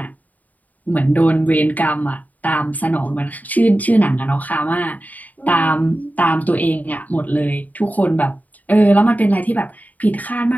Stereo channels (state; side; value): late; right; 0.077 ms